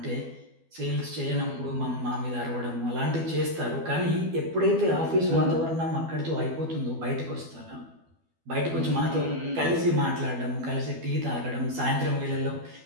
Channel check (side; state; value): left; late; 12 ms